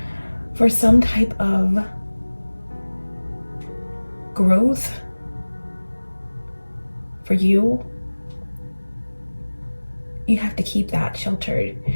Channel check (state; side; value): inverted; both; correlation -1.00